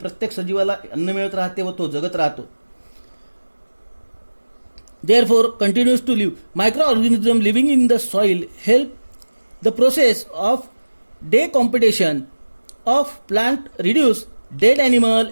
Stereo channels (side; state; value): both; inverted; correlation -1.00